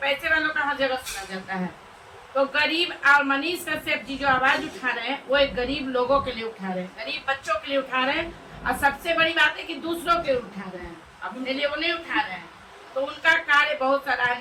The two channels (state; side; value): identical; both; correlation 1.00